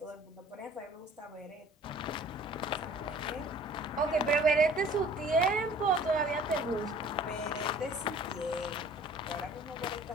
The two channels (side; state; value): both; normal; correlation 0.51